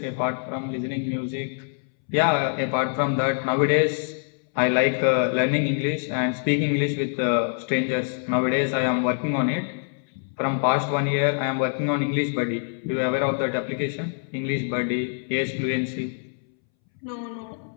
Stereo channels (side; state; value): right; silent; 62 dB below the other